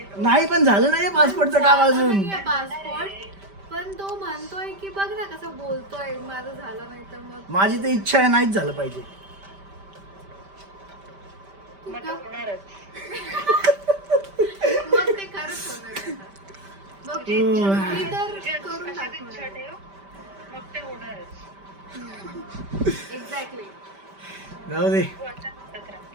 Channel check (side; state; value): left; late; 5.1 ms